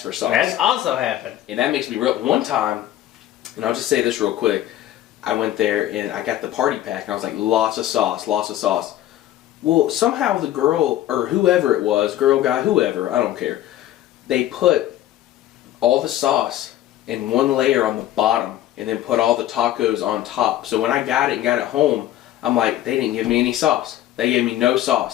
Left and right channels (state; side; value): quieter; right; 13.1 dB